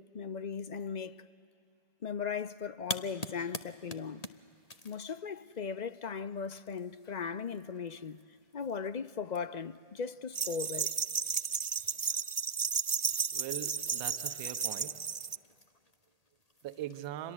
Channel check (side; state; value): right; late; 1.4 ms